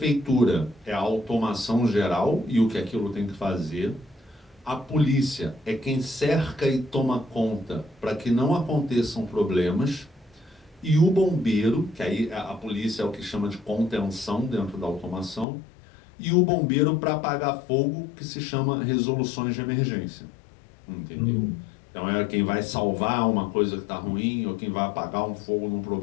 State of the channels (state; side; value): drops out; right; at 15.5 s